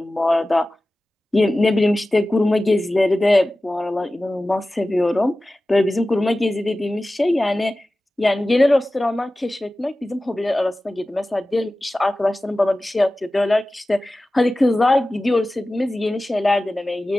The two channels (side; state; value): both; normal; correlation 0.96